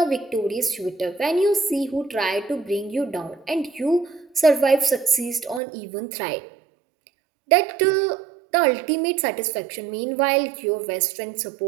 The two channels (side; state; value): left; drops out; at 5.6 s